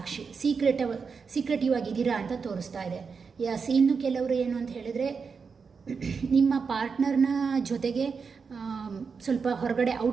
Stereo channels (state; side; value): quieter; left; 5.4 dB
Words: ಸೀಕ್ರೆಟಿವ್ ಆಗಿದ್ದೀರಾ ಅಂತ ತೋರಿಸ್ತಾ ಇದೆ. ಎಸ್, ಇನ್ನು ಕೆಲವರು ಏನು ಅಂತ ಹೇಳಿದರೆ ನಿಮ್ಮ ಪಾರ್ಟ್ನರ್ನ ಜೊತೆಗೆ ಸ್ವಲ್ಪ ಹೊರಗಡೆ